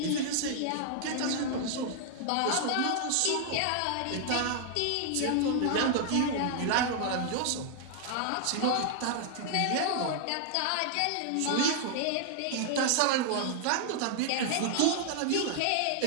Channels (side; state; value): both; different; correlation 0.00